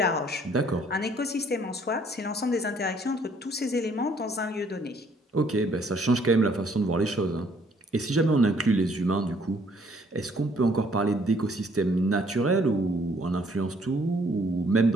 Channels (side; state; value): both; normal; correlation 0.63